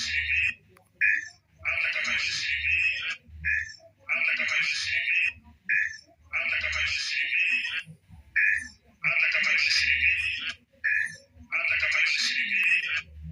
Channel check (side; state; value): both; identical; correlation 1.00